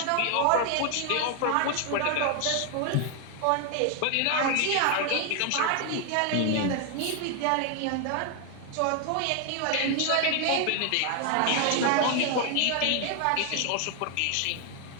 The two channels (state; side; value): different; both; correlation 0.00